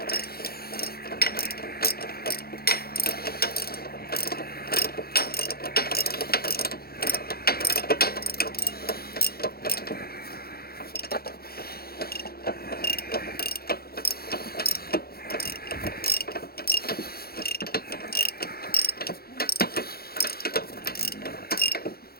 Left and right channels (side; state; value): right; late; 0.45 ms